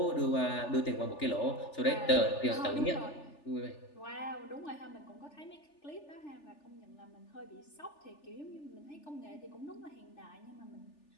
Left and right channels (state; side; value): late; right; 3.4 ms